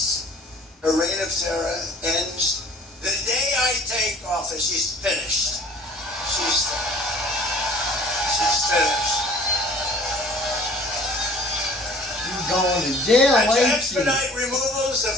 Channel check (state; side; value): normal; both; correlation 0.50